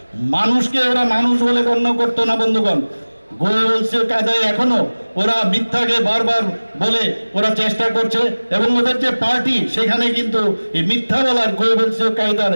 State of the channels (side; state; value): both; inverted; correlation -1.00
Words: মানুষকে ওরা মানুষ বলে গণ্য করতো না বন্ধুগণ। গোয়েবলসীয় কায়দায় এখনো ওরা মিথ্যাকে বারবার বলে ওরা চেষ্টা করছে, এবং ওদের যে পার্টি সেখানে কিন্তু এই মিথ্যা বলার গোয়েবলসীয় কায়দার